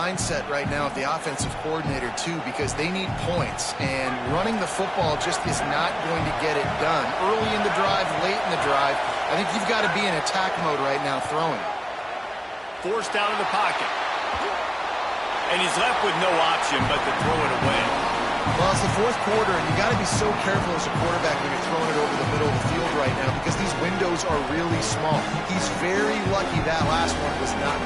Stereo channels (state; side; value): identical; both; correlation 1.00